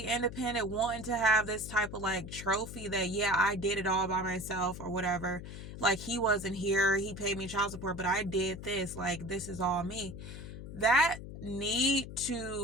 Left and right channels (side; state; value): left; noise; hum, 11 dB below the sound